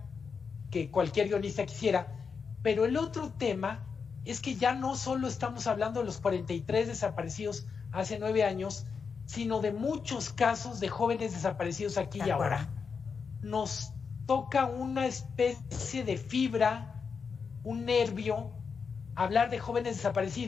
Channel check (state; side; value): quieter; right; 5.7 dB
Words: que cualquier guionista quisiera, pero el otro tema es que ya no solo estamos hablando de los 43 desaparecidos hace 9 años, sino de muchos casos de jóvenes desaparecidos aquí y ahora. Nos toca una especie de fibra, un nervio, hablar de jóvenes